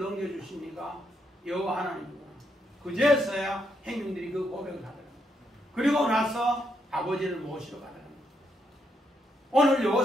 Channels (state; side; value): normal; both; correlation 0.78